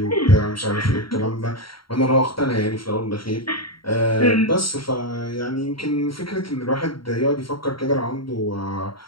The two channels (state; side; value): late; right; 0.73 ms